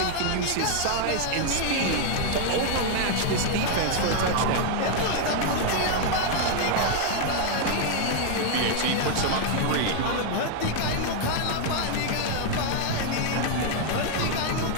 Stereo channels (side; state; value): both; different; correlation 0.00